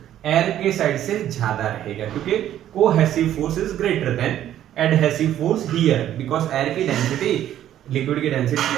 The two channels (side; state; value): left; quieter; 11.6 dB